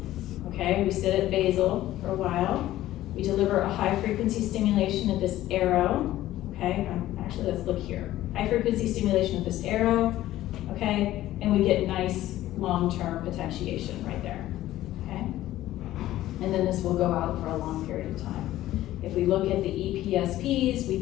Okay, we sit at basal for a while. We deliver a high frequency stimulation at this arrow. Okay, actually let's look here. High frequency stimulation at this arrow. Okay, and we get nice long-term potentiation right there. Okay, and then this will go out for a long period of time. If we look at the EPSPs,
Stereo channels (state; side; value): quieter; right; 14.6 dB